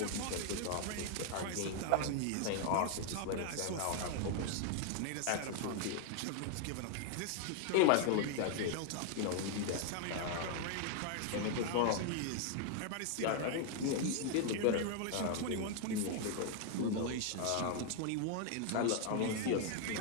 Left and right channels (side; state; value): both; different; correlation 0.00